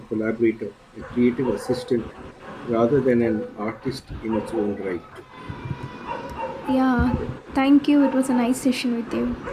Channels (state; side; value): identical; both; correlation 1.00